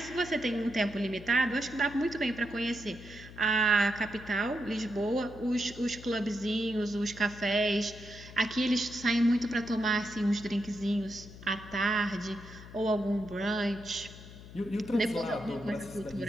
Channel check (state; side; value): noise; left; hum, 16 dB below the sound